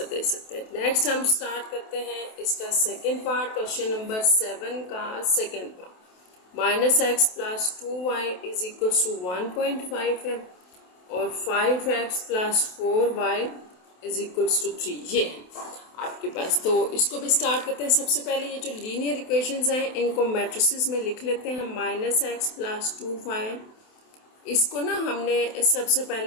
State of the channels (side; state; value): right; late; 28 ms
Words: दे सकते हैं। नेक्स्ट हम स्टार्ट करते हैं इसका सेकेंड पार्ट, क्वेश्चन नंबर 7 का second part. -x + 2y is equal to 1.5 है और 5x + 4y is equal to 3, ये आपके पास। तो इसको भी स्टार्ट करते हैं। सबसे पहले ये जो लीनियर इक्वेशंस हैं इनको मैट्रिसेस में लिख लेते हैं। -x + 2y, इसको ना हमने सबसे